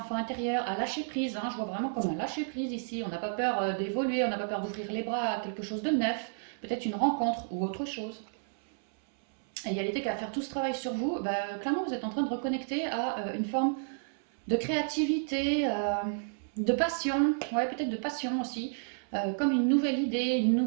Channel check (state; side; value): silent; left; 57 dB below the other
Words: intérieur, à lâcher prise. Hein, je vois vraiment comme un lâcher prise ici. On n'a pas peur d'évoluer, on n'a pas peur d'ouvrir les bras à quelque chose de neuf, peut-être une rencontre ou autre chose. Et il y a l'idée qu'à faire tout ce travail sur vous, bah, clairement vous êtes en train de reconnecter à une forme de créativité, de passion, ouais, peut-être de passion aussi, comme une nouvelle idée, une